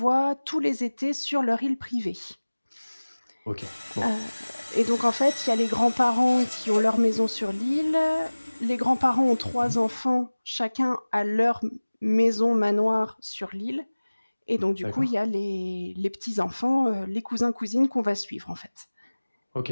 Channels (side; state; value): both; inverted; correlation -1.00